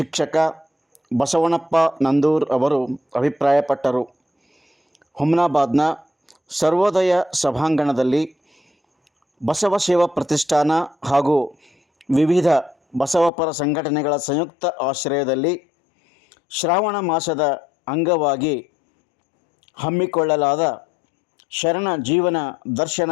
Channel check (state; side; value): drops out; right; at 13.3 s